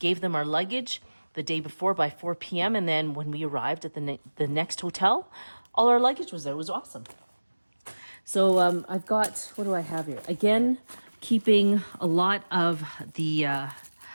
them our luggage the day before by 4 p.m. And then when we arrived at the next hotel, all our luggage was there. It was awesome. So I've got, what do I have here? Again, keeping a lot of the,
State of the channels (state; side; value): inverted; both; correlation -1.00